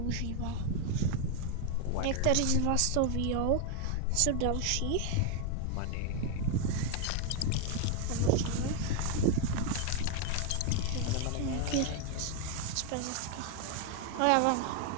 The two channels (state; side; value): different; both; correlation 0.01